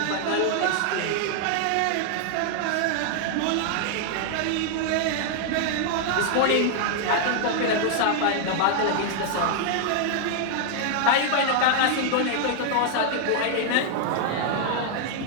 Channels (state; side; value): different; both; correlation 0.00